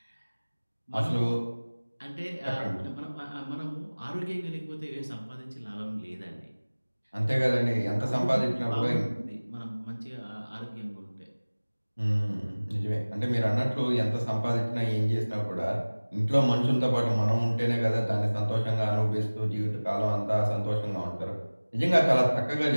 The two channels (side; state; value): both; inverted; correlation -1.00